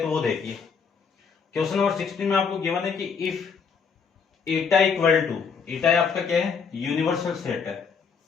वो देखिए, क्वेश्चन नंबर 16 में आपको गिवन है कि इफ ईटा इक्वल टू, ईटा आपका क्या है, यूनिवर्सल सेट है।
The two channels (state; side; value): quieter; right; 5.9 dB